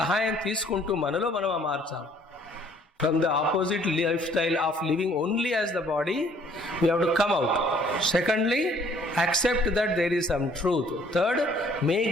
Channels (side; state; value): both; normal; correlation 0.59